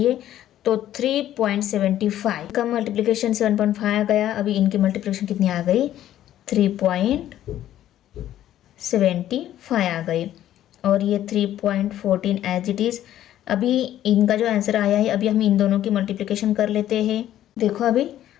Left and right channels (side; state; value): right; quieter; 12.3 dB